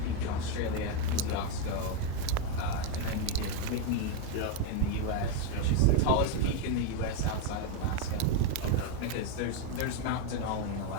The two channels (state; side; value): different; both; correlation 0.02